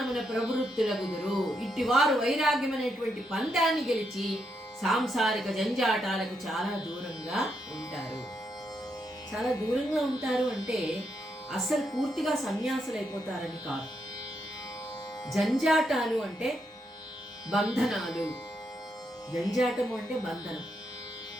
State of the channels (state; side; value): normal; both; correlation 0.80